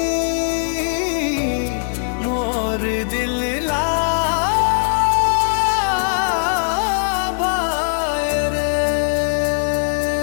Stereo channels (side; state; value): right; silent; 60 dB below the other